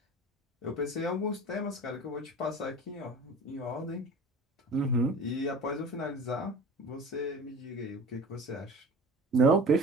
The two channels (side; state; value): both; normal; correlation 0.39